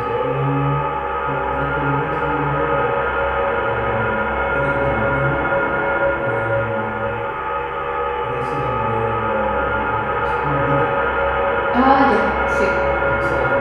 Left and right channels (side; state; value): both; identical; correlation 1.00